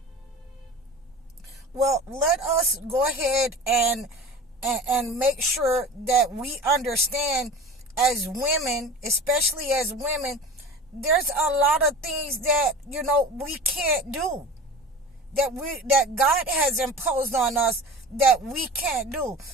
Well, let us go ahead and make sure that we understand as women, especially as women, there's a lot of things that we can't do, that God has imposed on us, that we can't do.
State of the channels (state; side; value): normal; both; correlation 0.36